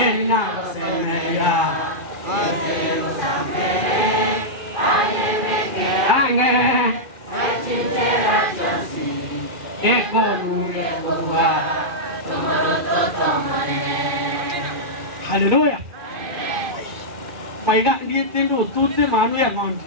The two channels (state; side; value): late; left; 2.5 ms